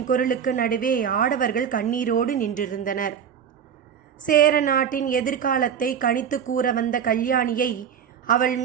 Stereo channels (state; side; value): quieter; left; 8.0 dB